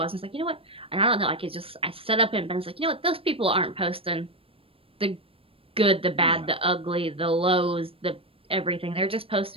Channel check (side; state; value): left; late; 0.27 ms